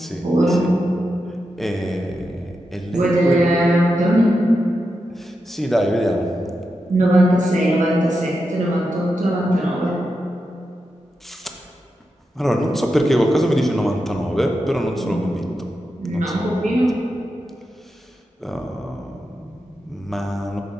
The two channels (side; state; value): both; normal; correlation 0.88